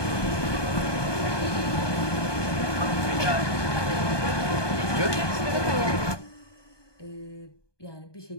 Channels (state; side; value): late; right; 1.2 ms